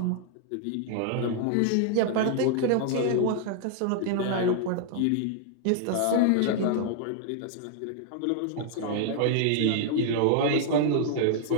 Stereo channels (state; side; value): different; both; correlation -0.01